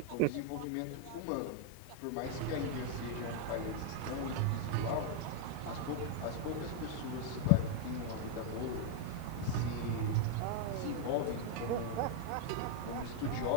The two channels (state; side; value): different; both; correlation 0.00